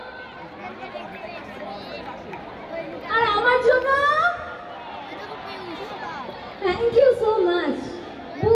আর আমার জন্য। Thank you so much.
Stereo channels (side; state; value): both; identical; correlation 1.00